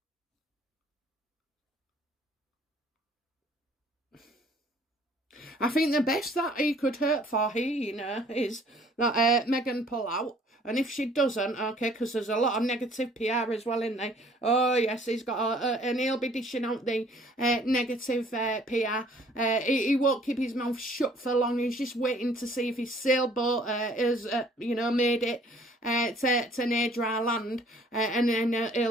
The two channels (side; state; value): both; normal; correlation 0.57